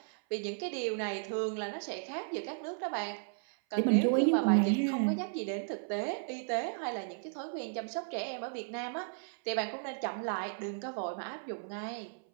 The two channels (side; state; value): left; silent; 55 dB below the other